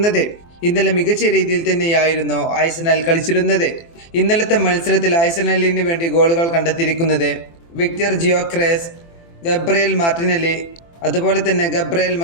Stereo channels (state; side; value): late; right; 24 ms